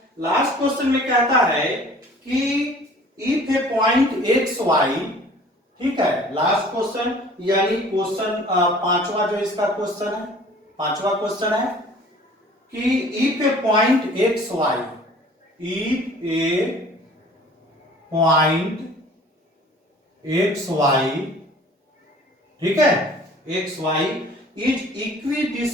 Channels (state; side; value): normal; both; correlation 0.49